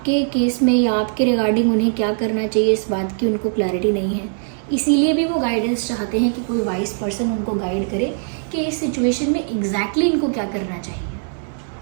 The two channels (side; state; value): left; silent; digital silence